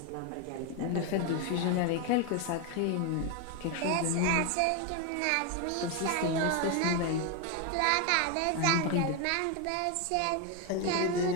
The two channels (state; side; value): different; both; correlation 0.01